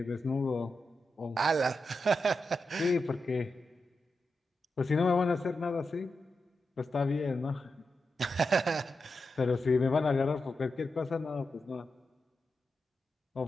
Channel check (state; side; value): normal; both; correlation 0.88